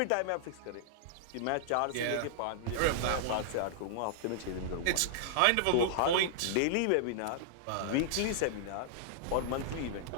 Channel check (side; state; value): both; different; correlation -0.01